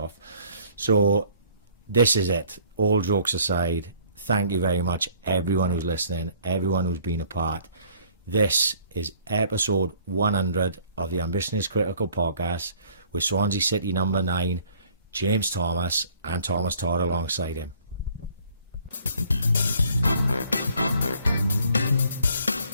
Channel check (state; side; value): inverted; both; correlation -0.58